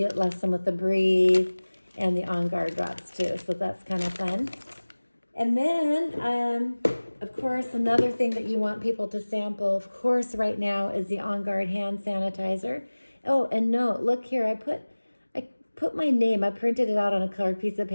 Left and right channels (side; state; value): both; inverted; correlation -1.00